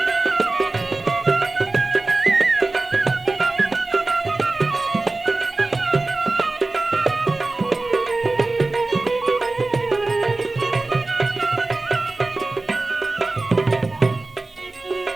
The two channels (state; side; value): quieter; left; 3.3 dB